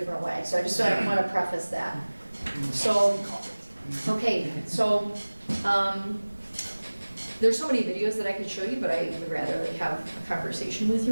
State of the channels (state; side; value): inverted; both; correlation -1.00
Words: way. So I just want to preface that. So, okay, so there's so many videos that I could show you, but I would rather like have a conversation with